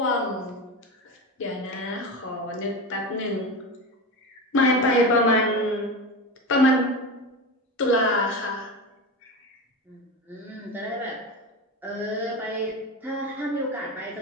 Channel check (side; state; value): both; normal; correlation 0.23